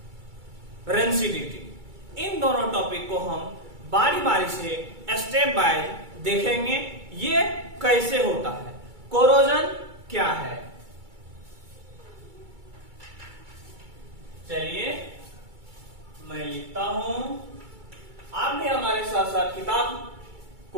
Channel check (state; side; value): late; left; 2.3 ms